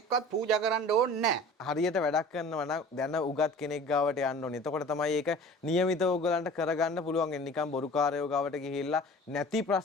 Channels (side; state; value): both; normal; correlation 0.42